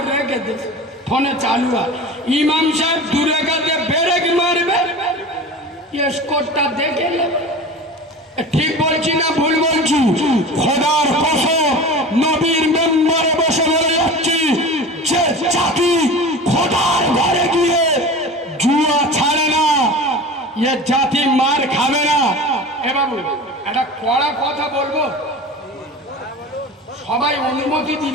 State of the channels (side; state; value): both; normal; correlation 0.34